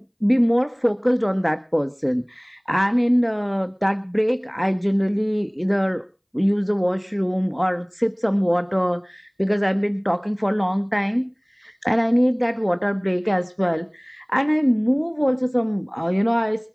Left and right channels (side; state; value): both; identical; correlation 1.00